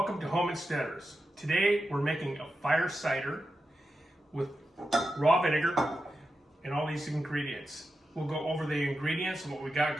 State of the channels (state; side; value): normal; both; correlation 0.90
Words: to Home Insteaders. Today we're making a fire cider with raw vinegar and all these ingredients. We'll go over the ingredients and what we got